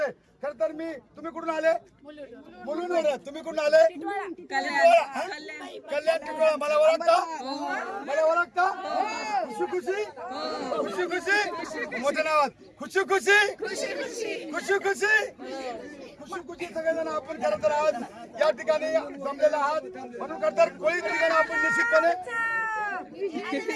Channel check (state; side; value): identical; both; correlation 1.00